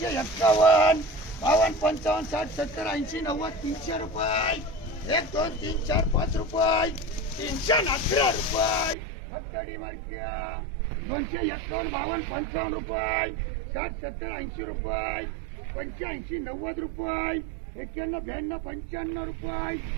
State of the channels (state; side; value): drops out; left; at 9.0 s